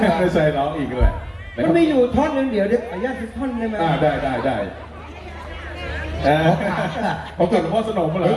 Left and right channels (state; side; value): identical; both; correlation 1.00